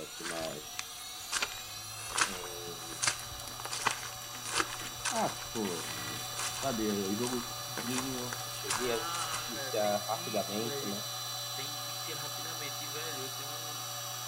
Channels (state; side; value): identical; both; correlation 1.00